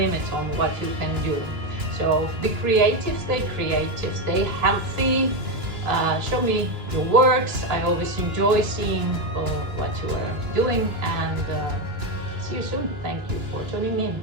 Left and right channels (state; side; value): late; left; 2.9 ms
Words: on what you can do. So be creative, stay healthy. Show me your works. I always enjoy seeing what you are doing, and see you soon. Thank you for tuning in.